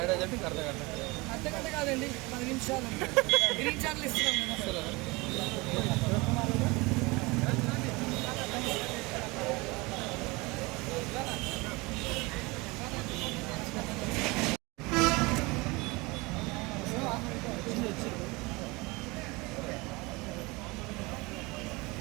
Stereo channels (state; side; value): quieter; left; 24.5 dB